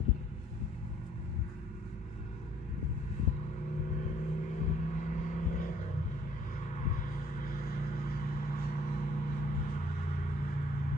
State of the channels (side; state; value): both; normal; correlation 0.60